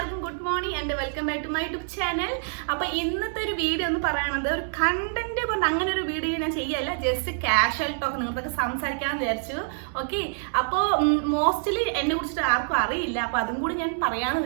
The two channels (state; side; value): silent; left; 57 dB below the other